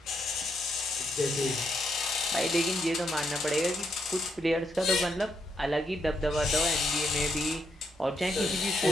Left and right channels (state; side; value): normal; both; correlation 0.78